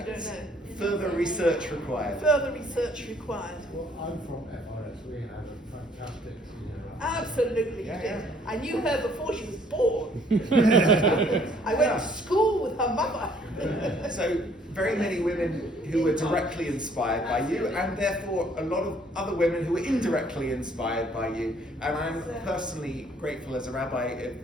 don't know. Further research required. Further research required. Well, I'm from FRS. We have a fantastic senior. Absolutely, Yeah, you did. yeah. I knew her before she was born. I went to school with her mother. So very many women who were directly inspired by you, and therefore a lot of other women who were indirectly inspired by you. And I'm personally grateful as a rabbi of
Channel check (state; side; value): normal; both; correlation 0.62